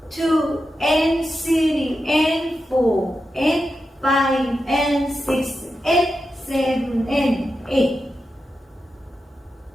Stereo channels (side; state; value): both; normal; correlation 0.89